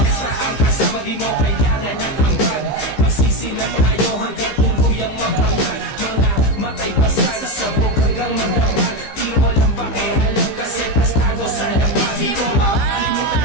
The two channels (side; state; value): right; late; 15 ms